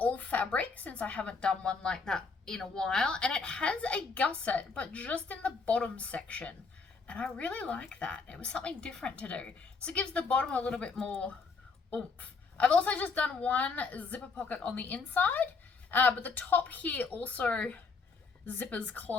fabric since I haven't done one like that in a while, and it has a gusset, but just in the bottom section. And I really like that. It was something different to do. So it gives the bottom a little bit more oomph. I've also just done one zipper pocket on the inside, but the top here also zippers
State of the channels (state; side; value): quieter; right; 4.7 dB